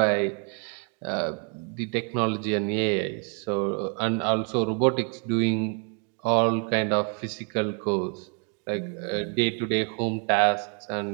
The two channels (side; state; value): left; quieter; 39.6 dB